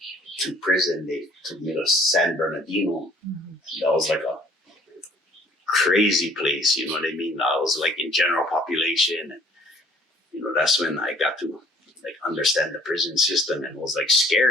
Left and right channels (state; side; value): normal; both; correlation 0.56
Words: to prison, they took me to San Bernardino. That was like a crazy place, you know what I mean? I was like in general population, and that's when I got to like understand the prison system, and it was like